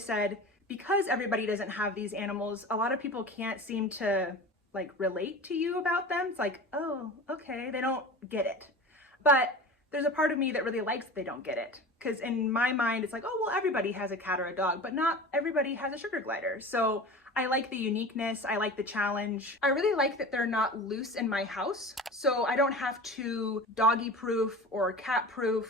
because everybody doesn't have these animals, a lot of people can't seem to like relate to you about them. It's like, oh, okay, they don't get it. But there's a part of me that really likes that they don't get it. Because in my mind, it's like, oh, well, everybody has a cat or a dog, but not everybody has a sugar glider. So I like the uniqueness. I like the challenge. I really like that they're not loose in my house. So I don't have to doggy proof or cat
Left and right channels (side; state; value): both; normal; correlation 0.34